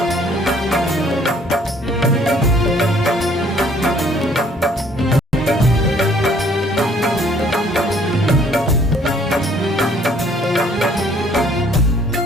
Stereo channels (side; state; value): both; normal; correlation 0.60